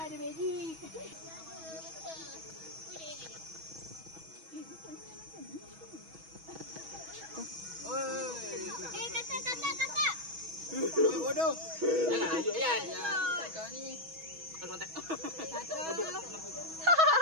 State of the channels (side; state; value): left; late; 6.2 ms